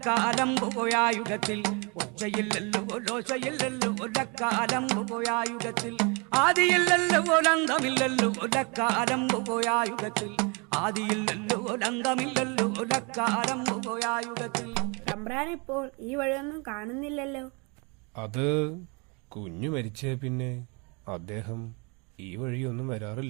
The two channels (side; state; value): left; quieter; 31.0 dB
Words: പോയായുഗത്തിൽ, ഒച്ചയില്ലല്ലോ ലോശയില്ലല്ലോ ലക്കാലം പോയായുഗത്തിൽ, ആദിയില്ലല്ലോ ലന്തമില്ലല്ലോ ലക്കാലം പോയായുഗത്തിൽ, ആദിയില്ലല്ലോ ലന്തമില്ലല്ലോ ലക്കാലം പോയായുഗത്തിൽ. തമ്പ്രാനിപ്പോൾ ഈ വഴിയൊന്നും കാണുന്നില്ലല്ലോ. അത് കുഞ്ഞു മരിച്ചേ പിന്നെ അദ്ദേഹം ഈ വഴിയൊന്നും